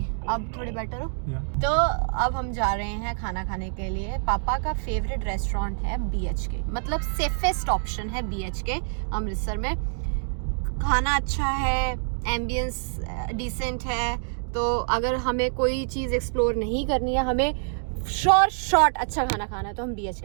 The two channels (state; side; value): silent; left; digital silence